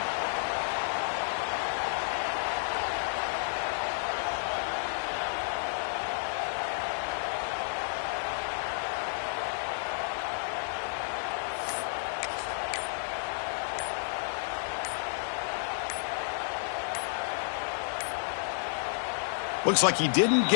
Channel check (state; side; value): silent; right; digital silence